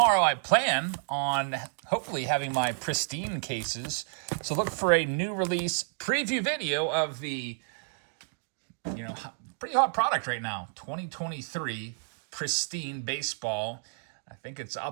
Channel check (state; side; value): silent; left; digital silence